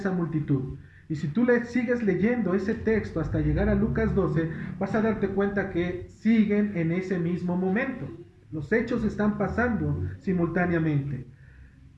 multitud. Y si tú sigues leyendo ese texto hasta llegar a Lucas 12, vas a darte cuenta que siguen en ese mismo momento. Los hechos están pasando simultáneamente.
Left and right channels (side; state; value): both; identical; correlation 1.00